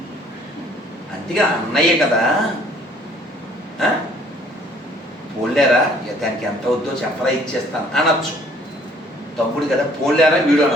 అంతేగా అన్నయ్య కదా, పోలేరా దానికి ఎంత వద్దో చెప్పరా ఇచ్చేస్తాను అనొచ్చు. తమ్ముడు కదా పోలేరా వీడు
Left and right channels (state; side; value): normal; both; correlation 0.59